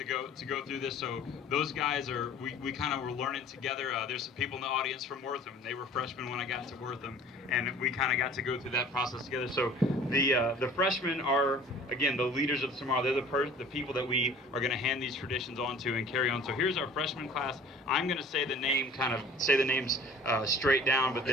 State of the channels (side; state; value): both; normal; correlation 0.47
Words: go through this. So those guys are, we kind of were learning together. There's some people in the audience from Wortham. They were freshmen when I got to Wortham, and we kind of got to go through that process together. So the freshmen are, again, the leaders of tomorrow. They're the people that we are going to hand these traditions on to and carry on. So here's our freshman class. I'm going to say the names straight down, but